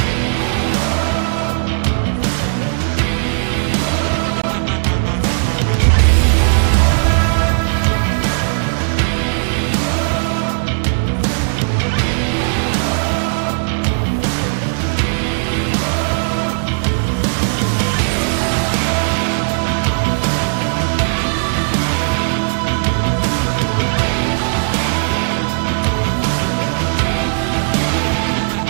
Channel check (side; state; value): left; silent; 64 dB below the other